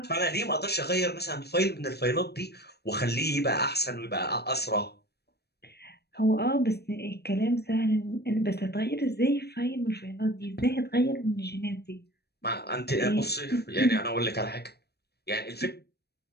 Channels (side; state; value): right; late; 0.47 ms